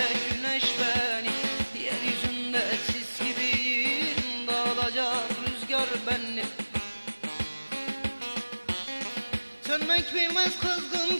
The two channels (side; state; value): both; inverted; correlation -1.00